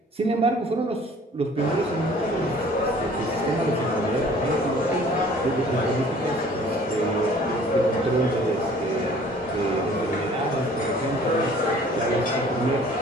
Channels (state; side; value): normal; both; correlation 0.52